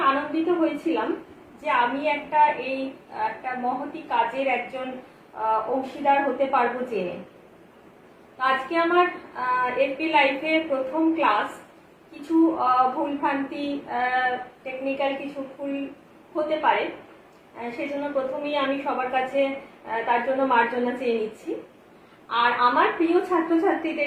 আনন্দিত হয়েছিলাম যে আমি একটা মহতি কাজের একজন অংশীদার হতে পারবো জেনে। আজকে আমার এপি লাইভে প্রথম ক্লাস। কিছু ভুলভ্রান্তি, টেকনিক্যাল কিছু ভুল হতে পারে, সেজন্য প্রথমেই আমি সবার কাছে তার জন্য মার্জনা চেয়ে নিচ্ছি। আর আমার প্রিয়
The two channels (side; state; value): both; identical; correlation 1.00